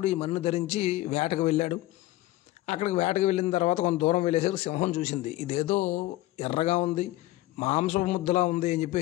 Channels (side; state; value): right; quieter; 17.1 dB